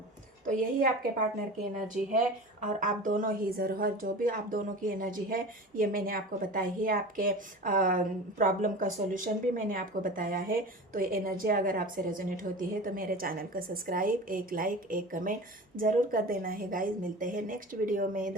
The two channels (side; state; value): both; normal; correlation 0.34